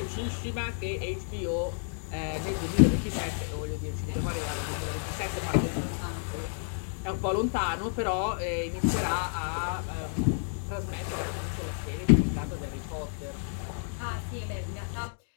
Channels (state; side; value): silent; right; digital silence